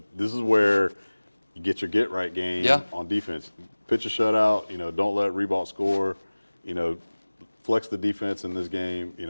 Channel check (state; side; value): inverted; both; correlation -1.00